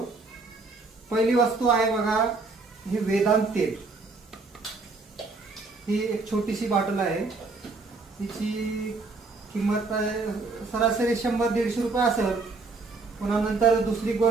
पहिली वस्तू आहे बघा, हे वेदांत तेल. ही एक छोटीशी बॉटल आहे. तिची किंमत सरासरी 100-150 रुपये असेल. पुन्हा नंतर दुसरी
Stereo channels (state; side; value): quieter; left; 3.8 dB